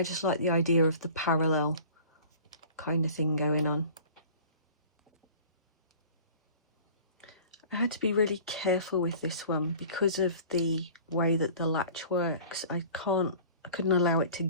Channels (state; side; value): inverted; both; correlation -0.45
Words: just like the idea of the parallel kind of thing going on. I had to be really careful with this one because of the way that the latch works. I couldn't allow it to